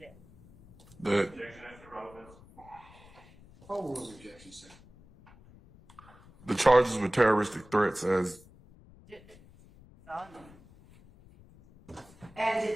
That Objection as to relevance. Overruled objection, sir. the charges were terroristic threats as And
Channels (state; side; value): noise; left; rumble, 24 dB below the sound